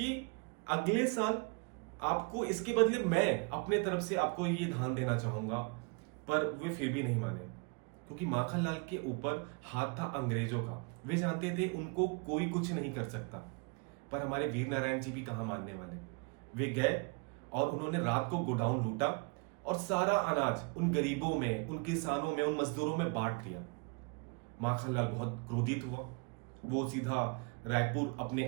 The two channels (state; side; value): quieter; left; 32.5 dB